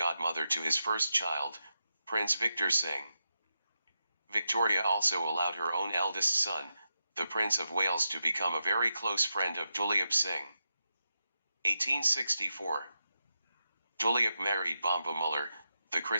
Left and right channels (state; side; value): inverted; both; correlation -0.88